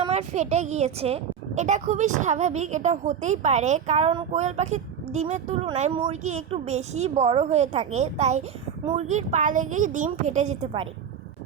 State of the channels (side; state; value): left; quieter; 8.0 dB